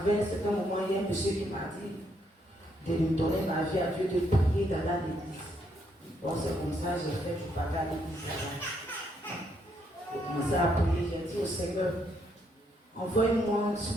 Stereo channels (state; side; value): normal; both; correlation 0.74